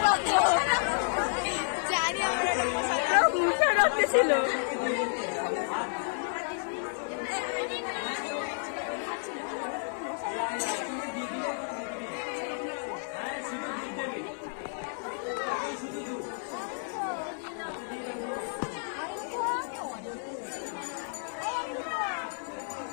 রাখতো। জানি আমরা মুখা রাখতে ছিল।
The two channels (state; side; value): silent; right; 57 dB below the other